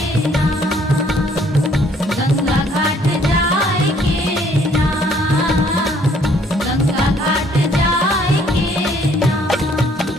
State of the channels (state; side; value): normal; both; correlation 0.63